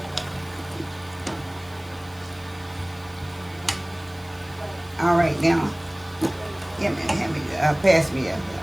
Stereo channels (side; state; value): right; noise; hiss, 25 dB below the sound